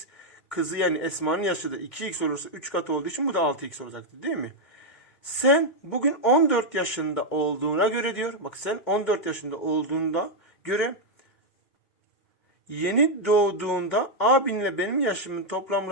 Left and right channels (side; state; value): right; late; 2.1 ms